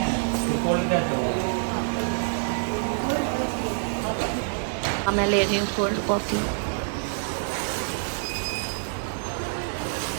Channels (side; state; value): left; silent; digital silence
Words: मैं ले रही हूँ कोल्ड कॉफ़ी।